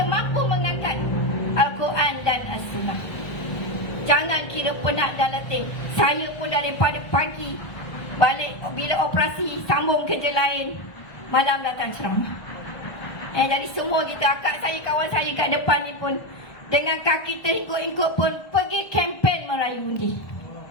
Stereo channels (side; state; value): right; late; 1.3 ms